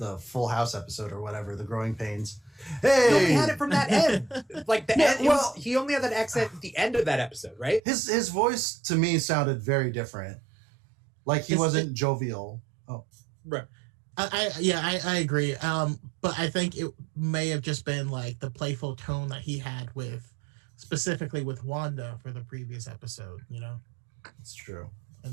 Full House episode or whatever, The Growing Pains. Hey! No, he had it from that end. Like the end. Well, he only had that accent at the end of that episode, right? His voice to me sounded very different. Like he wasn't jovial. Oh. Right. I agree. But I think it may have just been like the playful tone that he had specifically with Wanda for the previous episode, It's true. And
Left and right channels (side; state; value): left; drops out; at 7.8 s